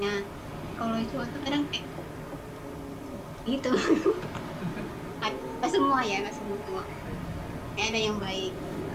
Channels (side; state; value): both; identical; correlation 1.00